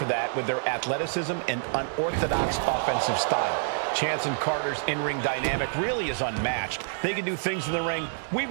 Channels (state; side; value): silent; left; digital silence